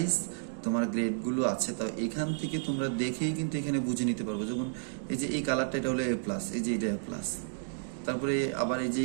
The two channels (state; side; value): silent; left; digital silence